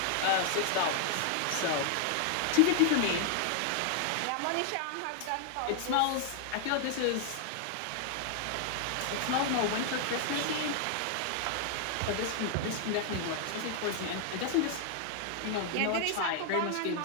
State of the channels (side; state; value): both; different; correlation 0.00